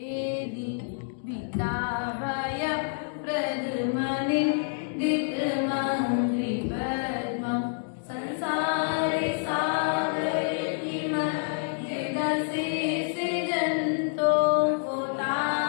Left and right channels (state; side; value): silent; right; digital silence